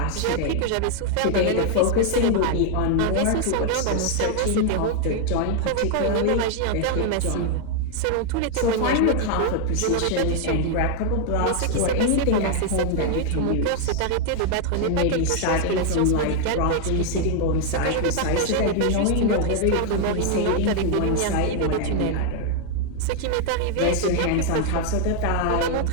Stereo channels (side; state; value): both; different; correlation 0.00